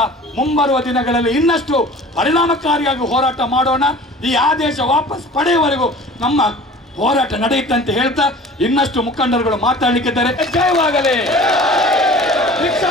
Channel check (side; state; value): both; normal; correlation 0.43